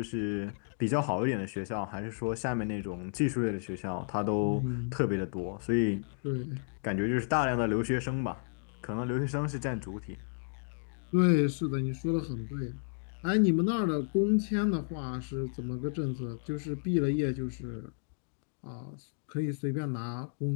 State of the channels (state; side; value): silent; right; digital silence